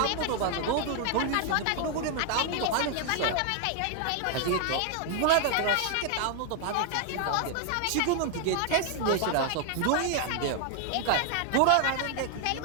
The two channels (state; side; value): different; both; correlation 0.00